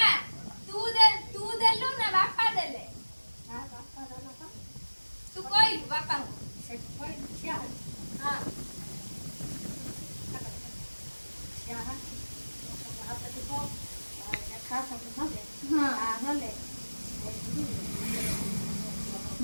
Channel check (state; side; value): inverted; both; correlation -1.00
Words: ତୁ ଦେଲୁ ନା ବାପା ଦେଲେ ତୁ କହିଲୁ ବାପାଙ୍କୁ